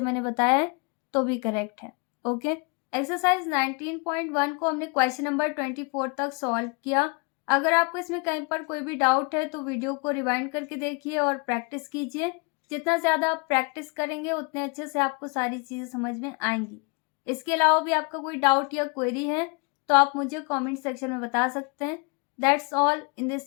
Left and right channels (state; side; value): quieter; right; 32.5 dB